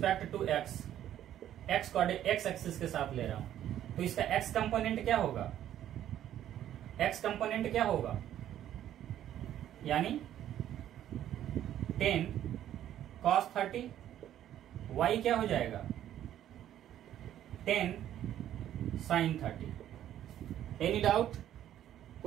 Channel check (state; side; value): quieter; left; 11.5 dB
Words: to x, x axis के साथ ले रहा हूं। तो इसका एक्स कंपोनेंट क्या होगा, एक्स कंपोनेंट क्या होगा, यानी 10 cos 30, y क्या हो जाएगा 10 sin 30। एनी डाउट,